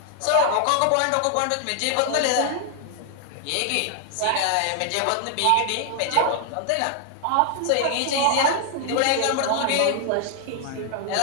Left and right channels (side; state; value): both; different; correlation 0.00